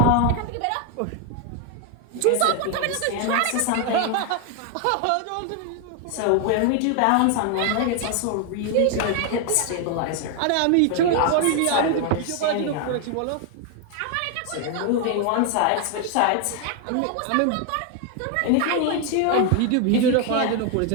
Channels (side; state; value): both; different; correlation 0.01